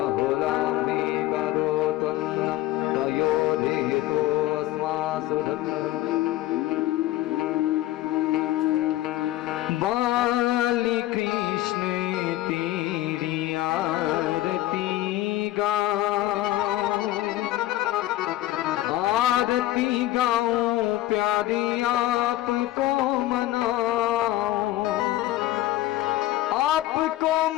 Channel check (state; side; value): quieter; right; 15.5 dB